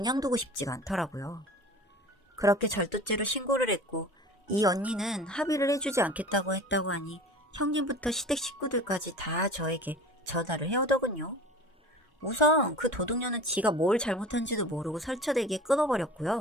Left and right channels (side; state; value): both; normal; correlation 0.39